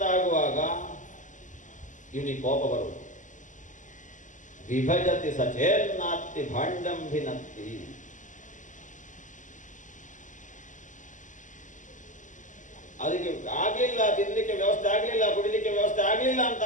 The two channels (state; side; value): late; right; 0.37 ms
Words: ಆಗುವಾಗ ಇವನಿಗೆ ಕೋಪ ಬರುವುದು. ವಿಭಜತಿ ಸಚೇನ್ನಾತ್ತಿ ಭಾಂಡಂಭಿನತ್ತಿ. ಅದಕ್ಕೆ ಆಗಲಿಲ್ಲ, ತಿನ್ನಲಿಕ್ಕೆ ವ್ಯವಸ್ಥೆ ಆಗಲಿಲ್ಲ, ಕುಡಿಲಿಕ್ಕೆ ವ್ಯವಸ್ಥೆ ಆಗಲಿಲ್ಲ ಅಂತ